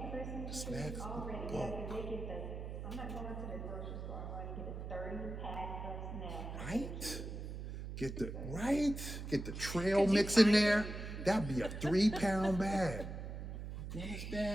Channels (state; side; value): noise; right; hum, 7 dB below the sound